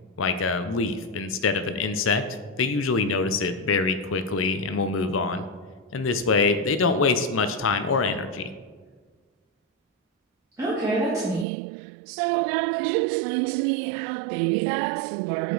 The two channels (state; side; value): drops out; left; at 11.5 s